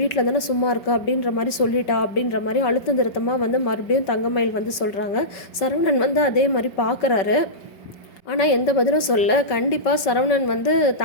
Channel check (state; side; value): late; right; 5.2 ms